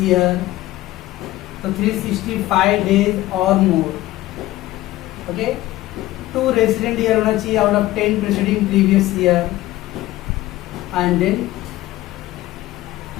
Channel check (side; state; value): right; quieter; 16.5 dB